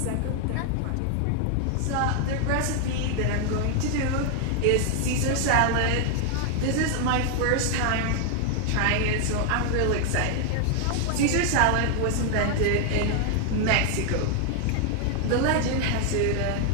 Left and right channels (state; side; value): different; both; correlation 0.00